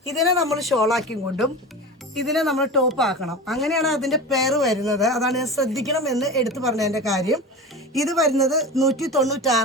ഇതിനെ നമ്മൾ ഷോളാക്കി കൊണ്ടും ഇതിനെ നമ്മൾ ടോപ്പ് ആക്കണം. അങ്ങനെയാണ് അതിന്റെ പേര് വരുന്നത്. അതാണ് ഞാൻ ശ്രദ്ധിക്കണം എന്ന് എടുത്തു പറഞ്ഞതിന്റെ കാര്യം. ഇത് വരുന്നത്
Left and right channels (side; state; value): both; normal; correlation 0.29